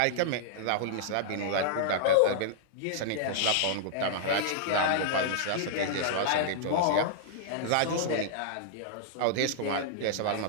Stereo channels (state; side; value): different; both; correlation -0.01